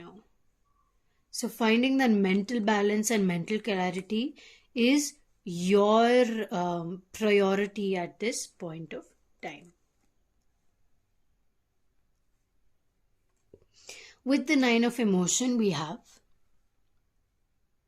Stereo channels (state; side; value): identical; both; correlation 1.00